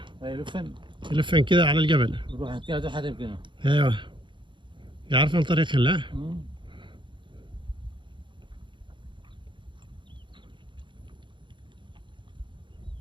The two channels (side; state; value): left; late; 0.23 ms